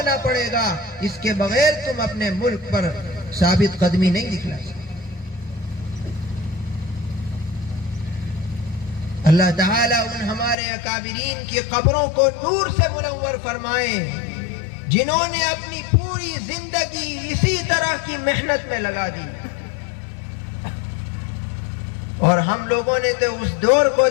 پڑے گا، اس کے بغیر تم اپنے ملک پر ثابت قدمی نہیں دکھلا سکتے۔ اللہ تعالیٰ ان ہمارے اکابرین کی قبروں کو نور سے منور فرمائے جنہوں نے اپنی پوری زندگی اسی طرح کی محنت میں لگا دی، اور ہم لوگوں نے تو اس دور کو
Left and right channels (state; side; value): drops out; right; at 10.6 s